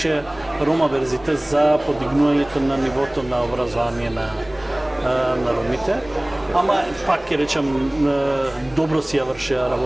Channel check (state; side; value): noise; right; rumble, 23 dB below the sound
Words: Рома Верзитас за подигнувањето на нивото на образование на ромите. Ама пак ќе речам, добро си ја вршеа